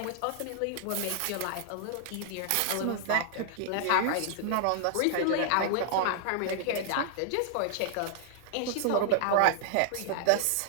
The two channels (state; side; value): different; both; correlation -0.01